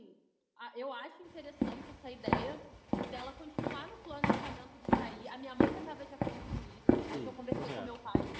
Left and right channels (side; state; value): both; identical; correlation 1.00